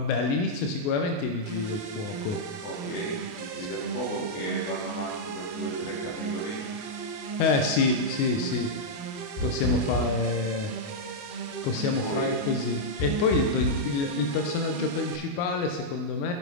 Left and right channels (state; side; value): late; right; 28 ms